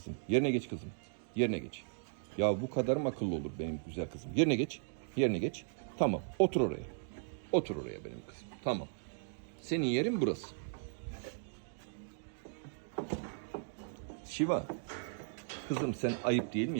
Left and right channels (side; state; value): left; silent; digital silence